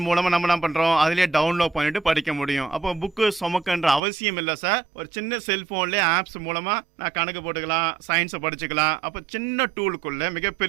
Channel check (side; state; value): left; drops out; at 4.0 s